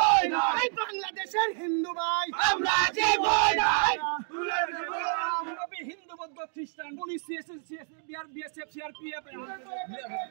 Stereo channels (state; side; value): silent; left; 58 dB below the other